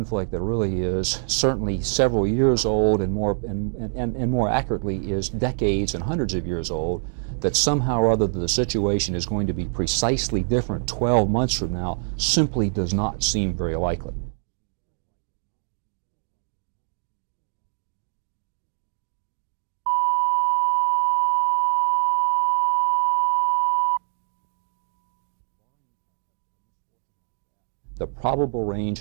that really is certainly several years old and more accurately is decades and hundreds of years old, that somehow or other the situation is going to be precisely different 12 months from now simply does not seem very likely. The probable range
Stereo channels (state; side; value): silent; left; digital silence